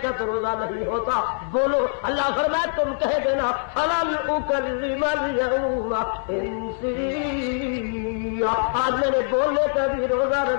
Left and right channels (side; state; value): right; silent; digital silence